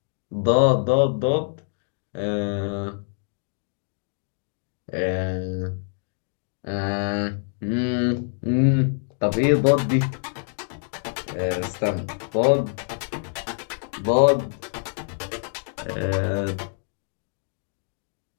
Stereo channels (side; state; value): right; silent; digital silence